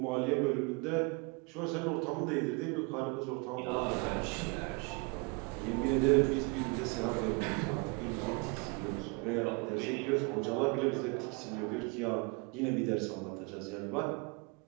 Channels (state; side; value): quieter; left; 30.6 dB